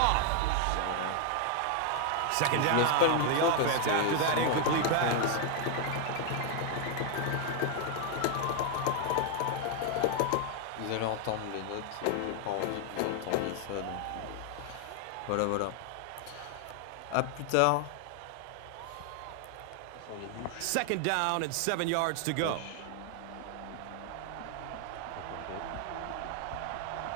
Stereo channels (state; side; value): different; both; correlation 0.00